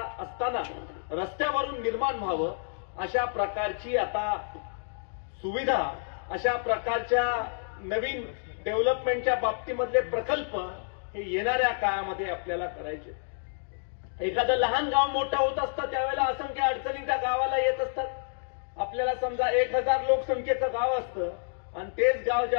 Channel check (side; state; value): right; silent; digital silence